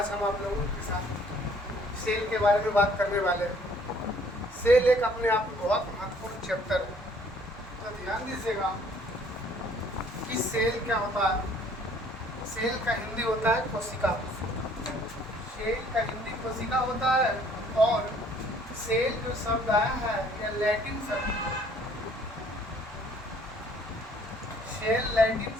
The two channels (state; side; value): normal; both; correlation 0.59